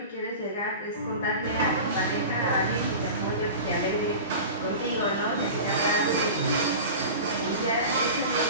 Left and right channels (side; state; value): both; inverted; correlation -0.33